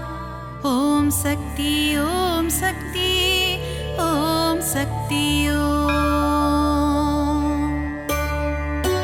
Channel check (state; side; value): identical; both; correlation 1.00